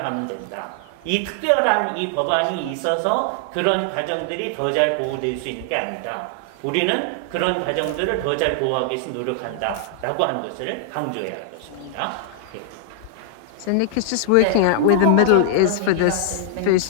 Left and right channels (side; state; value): both; different; correlation -0.01